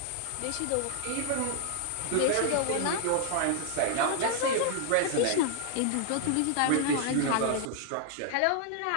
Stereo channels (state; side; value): different; both; correlation 0.00